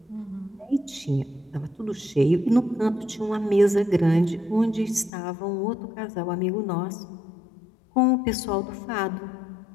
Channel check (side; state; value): right; drops out; at 5.1 s